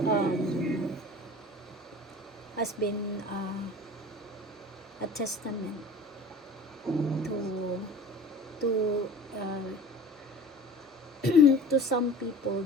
um, has been a testament to to uh, to some people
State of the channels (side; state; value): both; normal; correlation 0.41